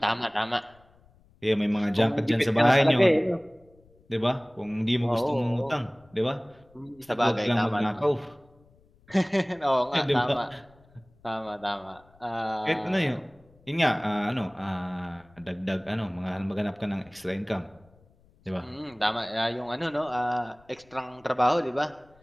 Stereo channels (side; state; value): left; noise; rumble, 30 dB below the sound